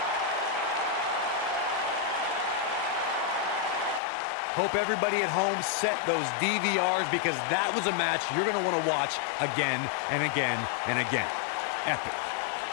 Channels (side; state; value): right; drops out; at 4.0 s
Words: Hope everybody at home set those DVRs because that was a match you're going to want to watch again and again and again. Epic.